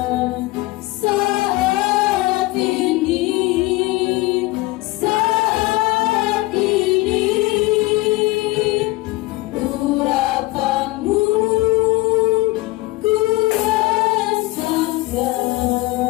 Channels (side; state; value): right; quieter; 20.4 dB